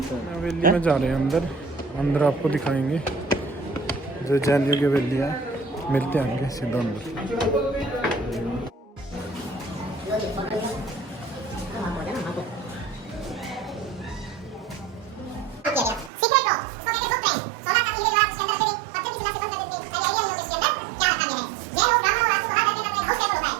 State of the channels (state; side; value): drops out; left; at 16.1 s